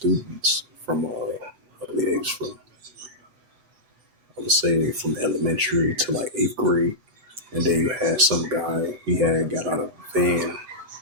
from, I believe it was from, I would say from elementary to like 8th grade. And then you had some guy, he had got out of the van,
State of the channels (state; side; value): late; left; 7.9 ms